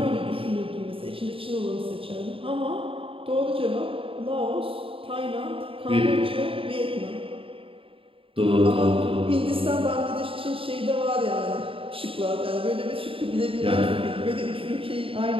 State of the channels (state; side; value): late; left; 0.26 ms